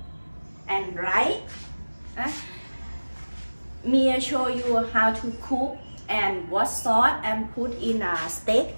and rice. Me show you how to cook and what sauce and put in a steak.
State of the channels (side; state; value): both; inverted; correlation -1.00